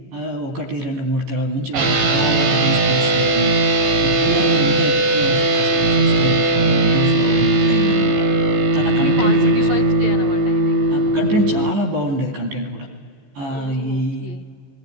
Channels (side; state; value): left; late; 15 ms